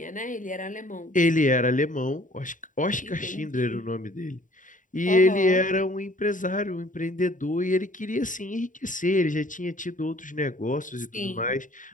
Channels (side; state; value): right; late; 0.38 ms